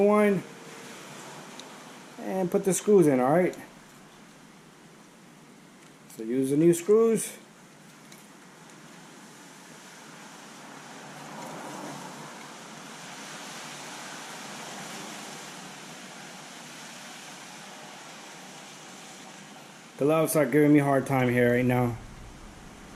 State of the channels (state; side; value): identical; both; correlation 1.00